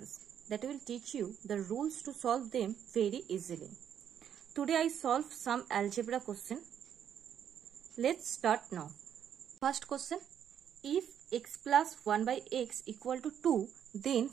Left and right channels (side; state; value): left; quieter; 9.1 dB